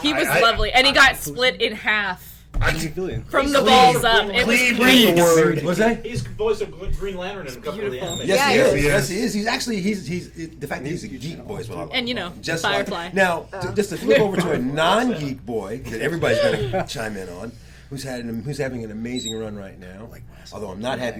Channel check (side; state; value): both; identical; correlation 1.00